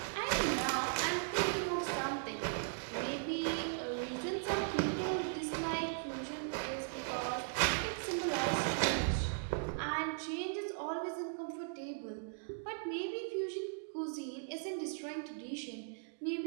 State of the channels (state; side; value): silent; left; digital silence